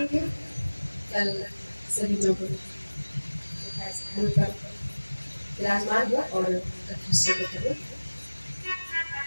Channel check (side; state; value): both; inverted; correlation -1.00